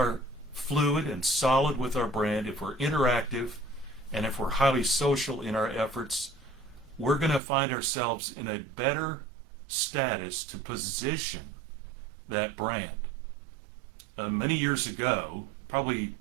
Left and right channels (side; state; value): left; drops out; at 7.4 s